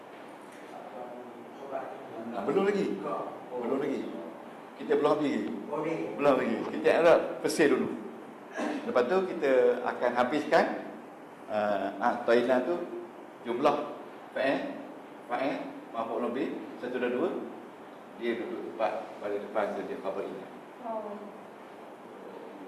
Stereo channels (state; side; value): identical; both; correlation 1.00